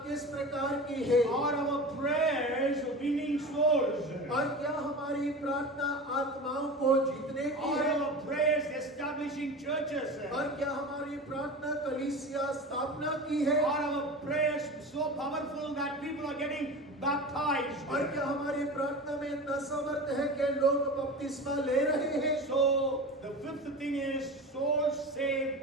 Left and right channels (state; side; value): normal; both; correlation 0.31